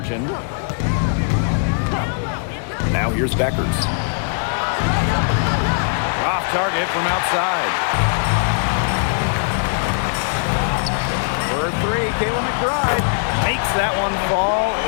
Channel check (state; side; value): silent; right; digital silence